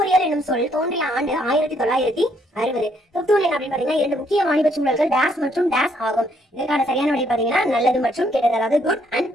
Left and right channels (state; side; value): normal; both; correlation 0.70